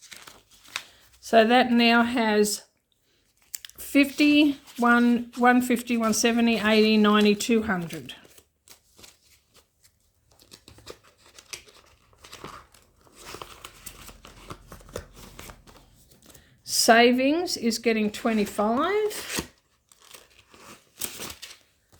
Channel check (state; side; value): identical; both; correlation 1.00